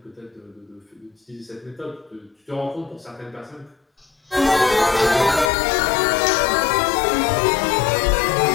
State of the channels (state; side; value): drops out; right; at 5.5 s